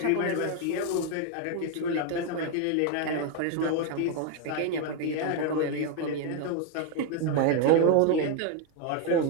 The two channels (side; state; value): both; different; correlation 0.01